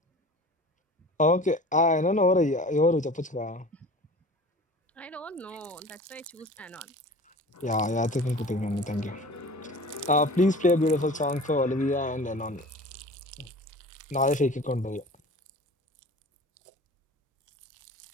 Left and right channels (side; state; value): both; normal; correlation 0.40